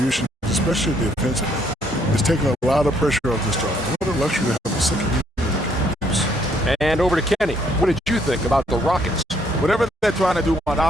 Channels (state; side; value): normal; both; correlation 0.69